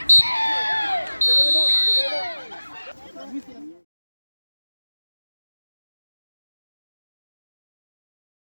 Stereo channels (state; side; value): inverted; both; correlation -1.00